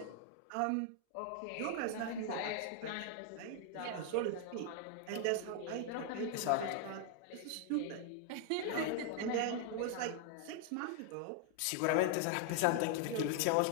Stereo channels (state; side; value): different; both; correlation 0.00